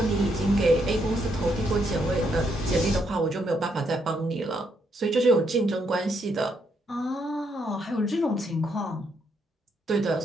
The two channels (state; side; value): normal; both; correlation 0.75